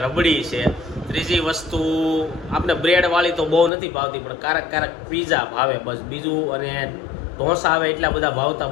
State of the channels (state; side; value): drops out; right; at 3.7 s